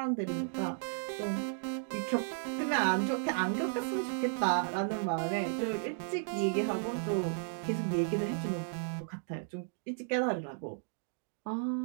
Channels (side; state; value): left; silent; digital silence